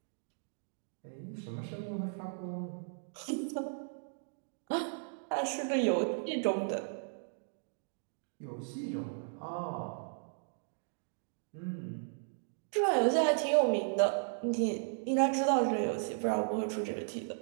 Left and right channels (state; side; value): silent; left; digital silence